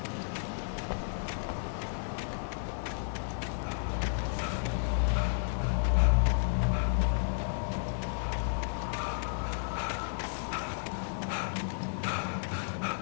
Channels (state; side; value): silent; right; digital silence